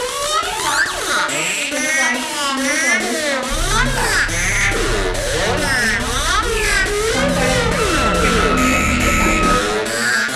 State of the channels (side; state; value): both; identical; correlation 1.00